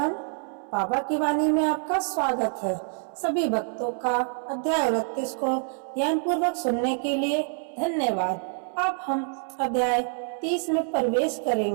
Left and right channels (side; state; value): left; silent; 61 dB below the other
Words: बाबा की वाणी में आपका स्वागत है। सभी भक्तों का अध्याय 29 को ध्यान पूर्वक सुनने के लिए धन्यवाद। अब हम अध्याय 30 में प्रवेश